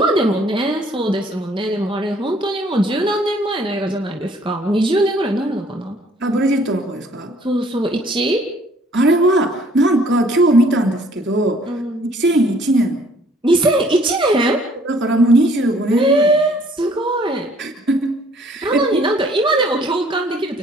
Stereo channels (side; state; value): both; normal; correlation 0.59